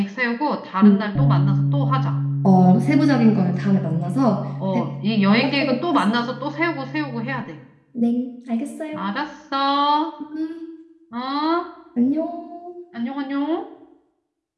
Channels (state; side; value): identical; both; correlation 1.00